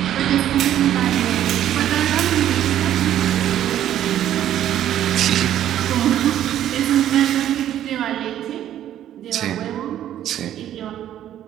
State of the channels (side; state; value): left; quieter; 11.5 dB